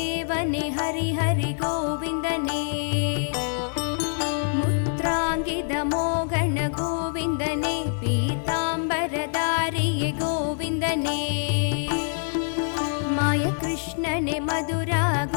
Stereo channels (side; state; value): right; silent; 62 dB below the other